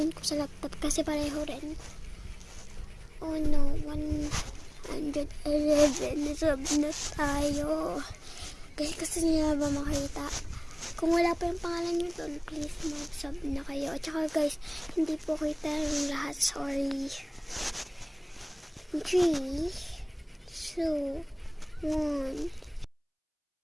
ko sa laptop kasi pareho rin. Oh no, 111 sub na tayo. Guys, gusto niyo na ba makita? Kung wala pa yung pangalan nyo doon, please mag-sub na kayo. At saka guys, hindi po kita yung lahat. Sorry. 3, 2, 1.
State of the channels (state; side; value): identical; both; correlation 1.00